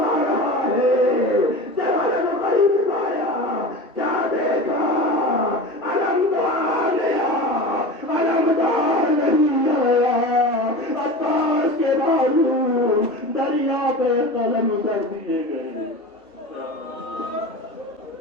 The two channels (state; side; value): normal; both; correlation 0.31